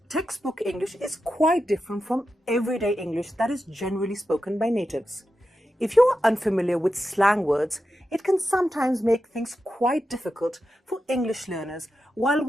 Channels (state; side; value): normal; both; correlation 0.90